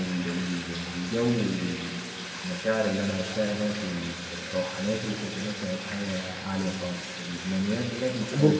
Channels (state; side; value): identical; both; correlation 1.00